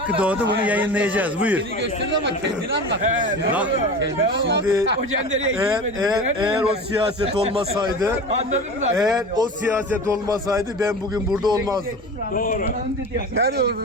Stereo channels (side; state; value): both; normal; correlation 0.32